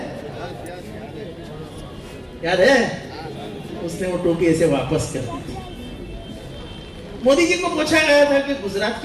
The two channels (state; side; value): identical; both; correlation 1.00